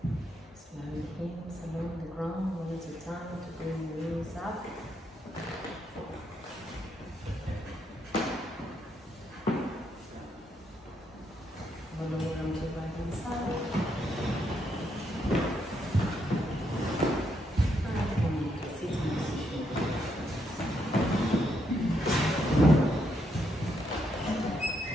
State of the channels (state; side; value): normal; both; correlation 0.77